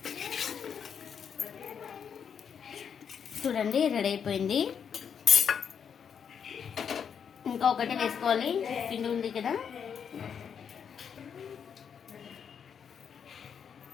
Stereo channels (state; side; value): quieter; right; 7.4 dB